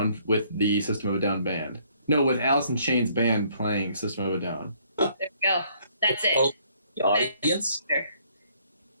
with the System of a Down band. No, with Alice in Chains band playing System of a Down. There we go. That's it. Oh, the audience.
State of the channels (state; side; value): inverted; both; correlation -0.64